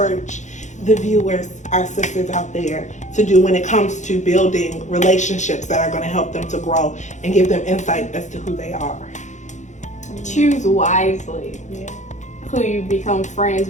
the viewers, our sisters out there, to do when it comes to building relationships that are going to help them to grow and give them insight as to who they are? Choose wisely who you become friends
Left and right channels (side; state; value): right; late; 0.35 ms